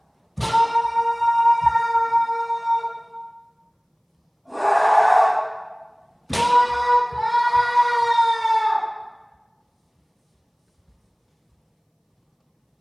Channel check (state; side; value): identical; both; correlation 1.00